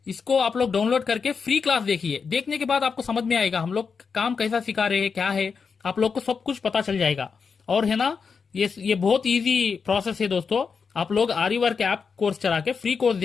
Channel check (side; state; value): right; quieter; 5.6 dB